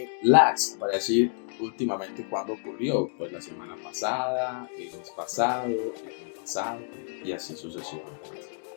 Last, para decir últimamente cuándo ocurrió, pues la semana pasada, el mes pasado, el año pasado y así sucesivamente.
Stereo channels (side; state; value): right; silent; 59 dB below the other